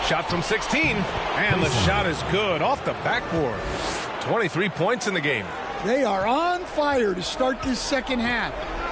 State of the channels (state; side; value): identical; both; correlation 1.00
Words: Shot from 16. And the shot is good off the backboard. 23 points in the game. They are on fire to start this second half.